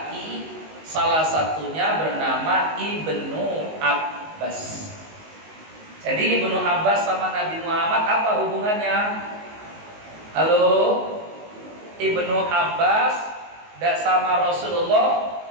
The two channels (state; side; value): late; left; 19 ms